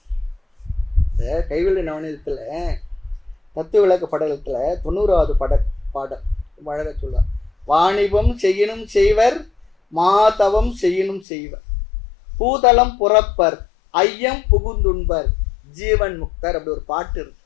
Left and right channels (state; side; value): drops out; right; at 11.2 s